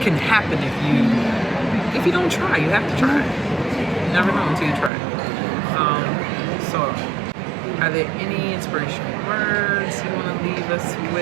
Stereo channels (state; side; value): drops out; left; at 4.9 s